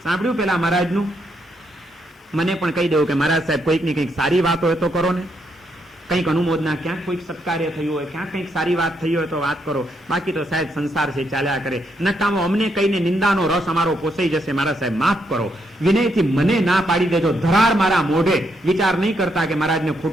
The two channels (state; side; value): normal; both; correlation 0.77